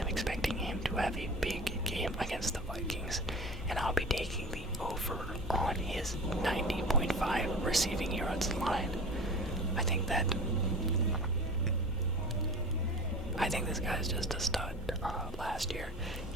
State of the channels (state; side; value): normal; both; correlation 0.36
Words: expecting him to have a big game against the Vikings, and I'll be taking the over on his 90.5 receiving yards line. I think this guy's just a stud. Last year,